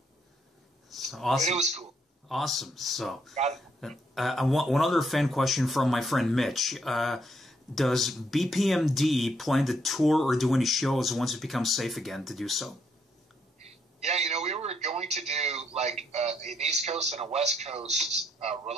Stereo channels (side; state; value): both; normal; correlation 0.74